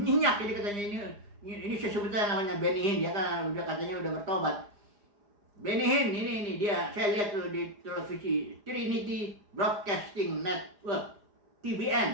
ini katanya ini sebetulnya namanya Benny Hinn, dia kan udah katanya udah bertobat. Benny Hinn ini dia, saya lihat tuh di televisi Trinity Broadcasting Network,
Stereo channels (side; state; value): left; late; 4.9 ms